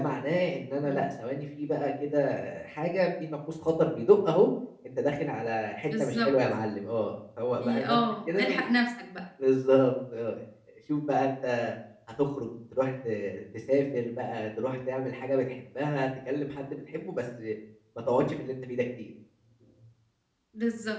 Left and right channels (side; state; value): both; identical; correlation 1.00